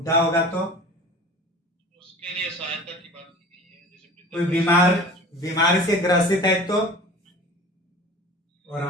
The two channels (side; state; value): both; normal; correlation 0.40